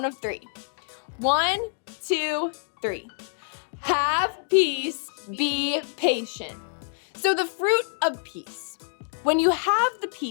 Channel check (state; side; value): silent; right; digital silence